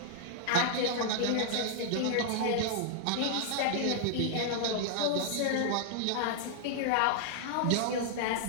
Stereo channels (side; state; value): both; different; correlation -0.01